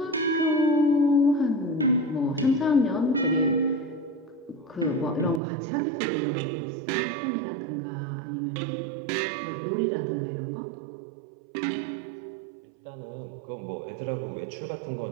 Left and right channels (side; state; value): left; drops out; at 5.4 s